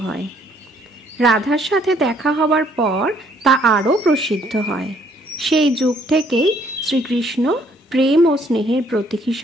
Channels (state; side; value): normal; both; correlation 0.65